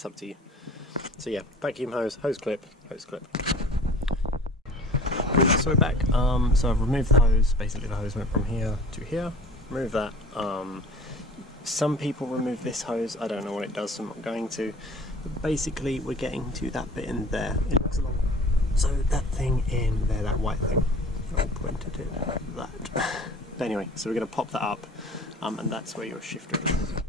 up to you. So yeah, vacuum hose, hose clip. So we're back. So I've removed the hose. Basically the hose went from here to here. Remove that. Some people remove this hose. I don't know what it does, so I'm not going to. But basically we're getting to that bit in there. It looks along. So that thing in there, that white thing. I'll point it at that. But anyway, so we're going to pop that up, and that's where your shifter is.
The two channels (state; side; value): normal; both; correlation 0.45